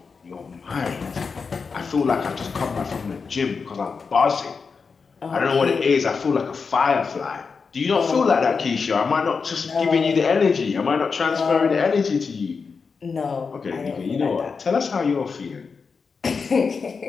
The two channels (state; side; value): quieter; right; 5.2 dB